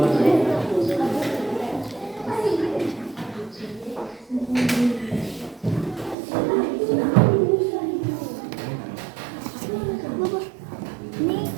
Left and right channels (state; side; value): drops out; left; at 6.2 s